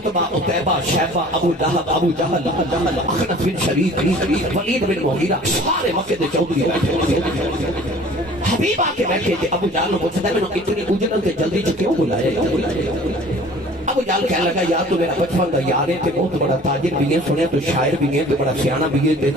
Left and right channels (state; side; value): normal; both; correlation 0.48